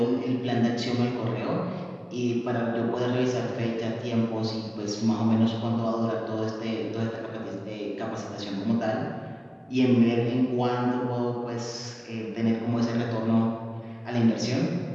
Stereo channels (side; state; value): both; identical; correlation 1.00